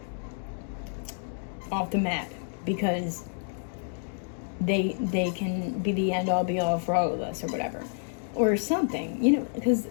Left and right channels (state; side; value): silent; right; digital silence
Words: map, because they can be the end-all be-all for all of us, or whatever. Or something, because